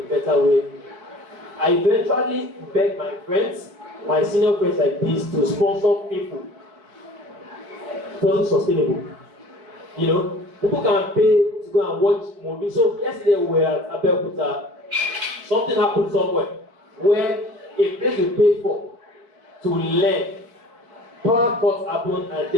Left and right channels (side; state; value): left; late; 4.5 ms